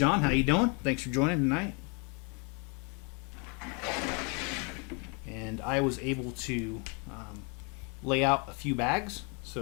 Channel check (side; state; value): right; quieter; 34.3 dB